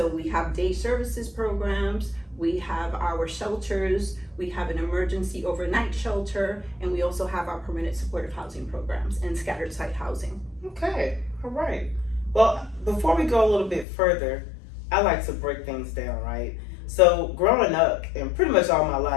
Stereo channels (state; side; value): drops out; right; at 13.9 s